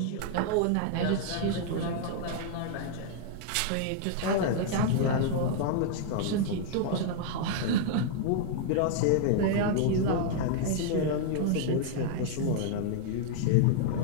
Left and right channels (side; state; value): both; different; correlation -0.01